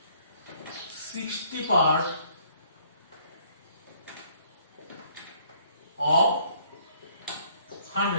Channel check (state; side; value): inverted; both; correlation -0.62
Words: 60 part of